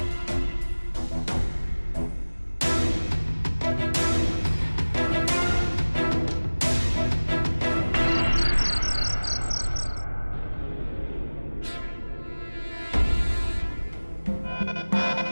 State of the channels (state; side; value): inverted; both; correlation -1.00